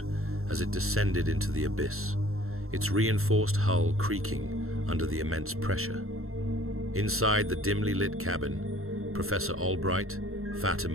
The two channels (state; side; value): late; left; 0.62 ms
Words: as it descended into the abyss, its reinforced hull creaking under the immense pressure. Inside the dimly lit cabin, Professor Albright,